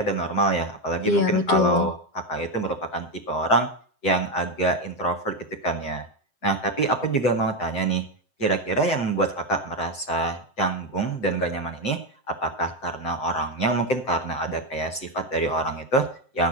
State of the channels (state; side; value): late; right; 7.7 ms